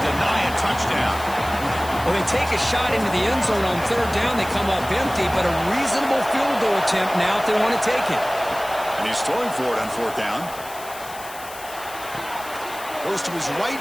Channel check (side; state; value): left; noise; hiss, 15 dB below the sound